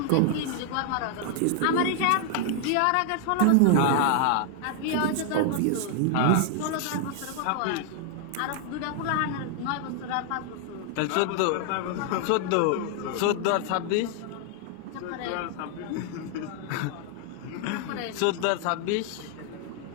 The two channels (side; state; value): both; different; correlation 0.00